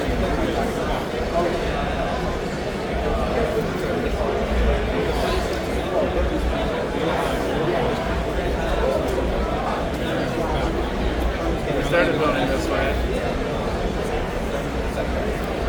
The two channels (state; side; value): identical; both; correlation 1.00